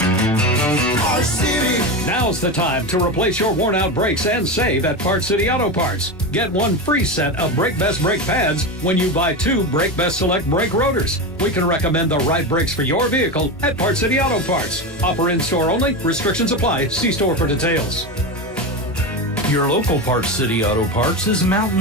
City. Now's the time to replace your worn-out brakes and save at Parts City Auto Parts. Get 1 free set of Brake Best brake pads when you buy 2 Brake Best Select brake rotors. We can recommend the right brakes for your vehicle at Parts City Auto Parts. Offer in-store only. Restrictions apply. See store for details. Your local Parts City Auto Parts is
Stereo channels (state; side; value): normal; both; correlation 0.19